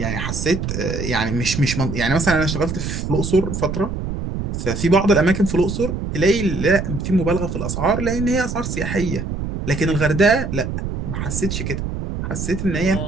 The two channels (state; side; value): noise; right; rumble, 4 dB below the sound